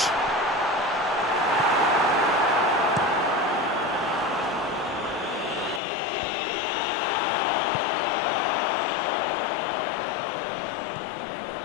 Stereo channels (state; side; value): drops out; right; at 5.8 s